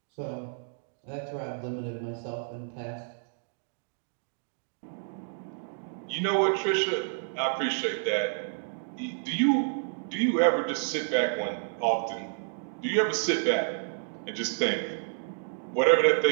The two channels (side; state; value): left; silent; digital silence